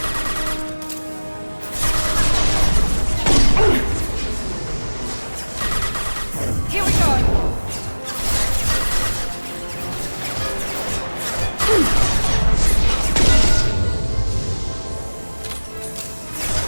Here we go.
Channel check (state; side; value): inverted; both; correlation -1.00